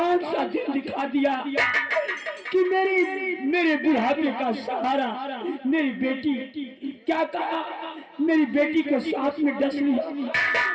सा दिन दिखा दिया कि मेरे बुढ़ापे का सहारा मेरी बेटी। क्या कहा? मेरी बेटी को सांप में डस लिया।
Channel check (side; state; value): both; identical; correlation 1.00